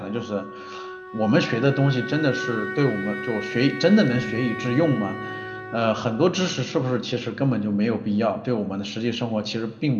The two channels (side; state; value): both; identical; correlation 1.00